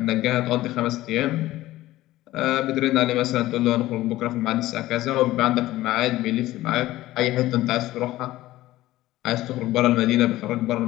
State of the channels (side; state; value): right; quieter; 16.2 dB